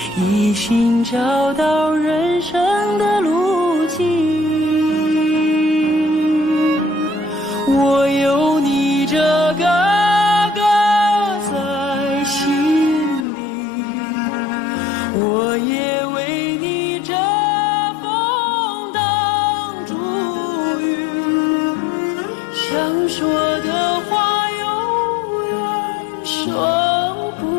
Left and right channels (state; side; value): drops out; right; at 13.2 s